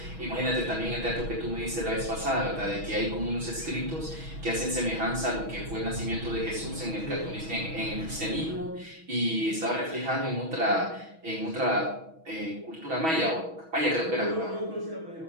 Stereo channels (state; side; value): late; left; 6.2 ms